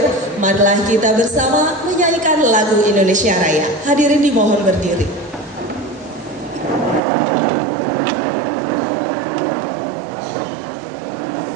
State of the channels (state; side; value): drops out; left; at 7.0 s